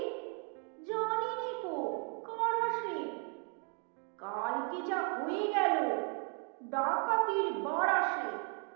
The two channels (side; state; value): left; quieter; 39.8 dB